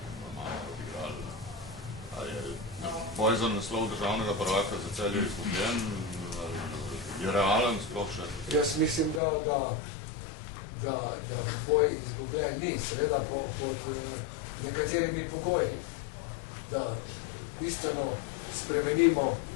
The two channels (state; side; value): drops out; right; at 9.2 s